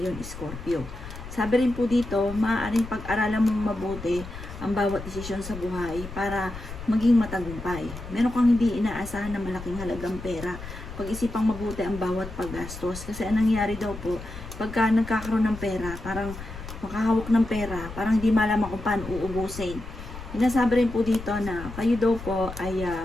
Scorpio. Sabi rin po dito, maaaring pag-aralan mong mabuti ang bawat desisyon sa buhay para maging matagumpay. Meron kang hindi inaasahan na malaking halagang pera. Pag-isipang mabuti ang bawat paggastos. Kasi ang nangyari daw po, pagka nagkakaroon ng pera, parang makahawak ng pera, parang hindi malaman kung paano uubusin. Sinasabi rin po dito na kayo daw po ay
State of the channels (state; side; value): noise; left; rumble, 11 dB below the sound